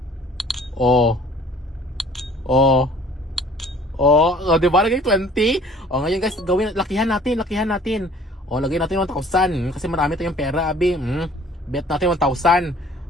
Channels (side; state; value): both; normal; correlation 0.53